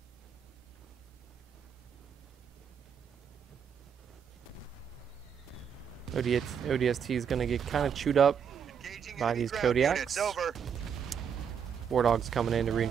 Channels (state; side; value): quieter; left; 7.4 dB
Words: ODST is gonna get kind of chewed up by these Kodiaks. Wardog's coming in to